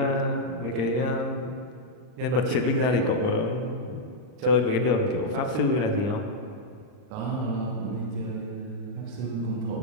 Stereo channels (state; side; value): late; left; 39 ms